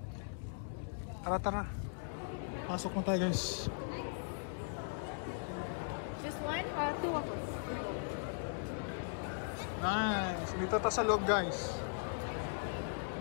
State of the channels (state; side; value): silent; right; digital silence